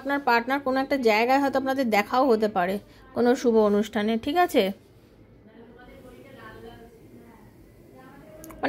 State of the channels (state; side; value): identical; both; correlation 1.00